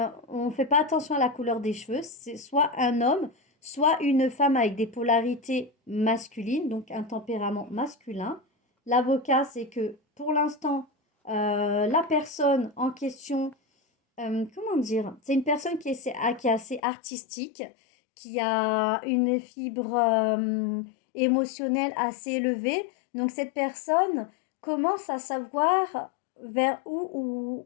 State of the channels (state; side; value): drops out; right; at 16.8 s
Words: on ne fait pas attention à la couleur des cheveux. C'est soit un homme, soit une femme avec des polarités masculines, donc un tempérament masculin. L'avocat, c'est que pour l'instant, la personne en question, comment dire, c'est une personne qui est assez artistique, qui a une fibre émotionnelle assez élevée. Donc cette personne commence à savoir vers où